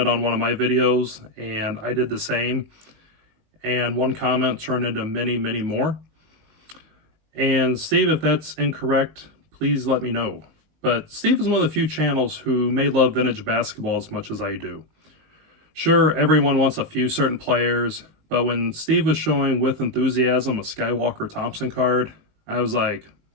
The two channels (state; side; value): late; left; 19 ms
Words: on one of my videos and I did the same. And one comment turned into many, many more. And Steve, if that's incorrect, please let me know. But Steve is one of the few channels who may love vintage basketball as much as I do. Sure, everyone wants a few certain players, but when Steve was showing with enthusiasm a Skywalker Thompson card, I was like,